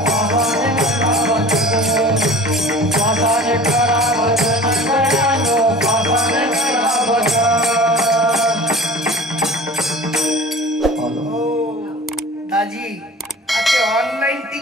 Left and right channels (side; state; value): both; normal; correlation 0.42